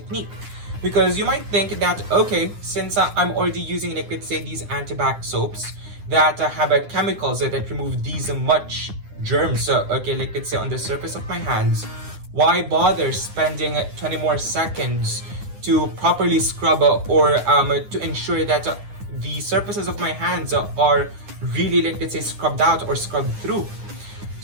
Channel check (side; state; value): left; late; 9.8 ms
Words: Because you might think that, okay, since I'm already using, like, let's say, these antibac soaps that have chemicals that remove these much germs, okay, like, let's say, on the surface of my hands, why bother spending 20 more seconds to properly scrub or to ensure that the surfaces of my hands are really, like, let's say, scrubbed out or scrubbed through?